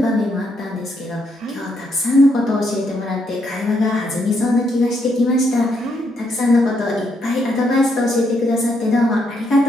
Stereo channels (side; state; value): both; normal; correlation 0.76